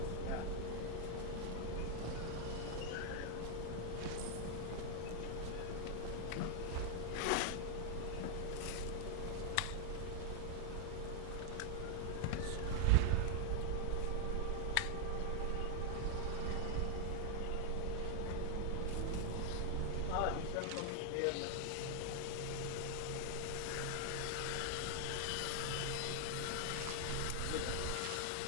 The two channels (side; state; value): both; different; correlation 0.00